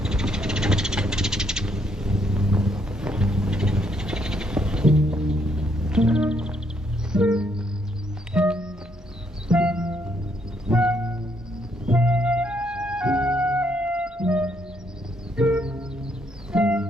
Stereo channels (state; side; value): normal; both; correlation 0.72